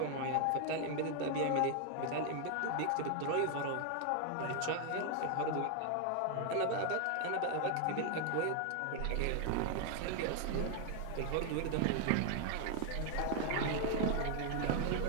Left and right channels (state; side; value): different; both; correlation 0.00